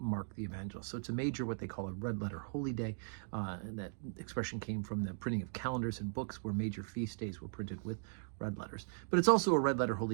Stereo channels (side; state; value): left; silent; digital silence